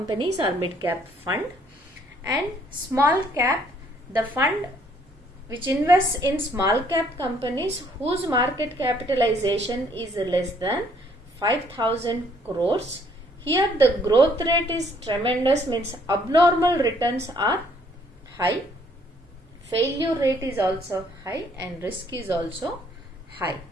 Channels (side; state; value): both; normal; correlation 0.64